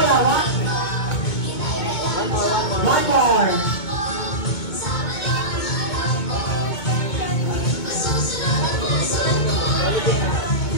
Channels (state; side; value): late; right; 2.2 ms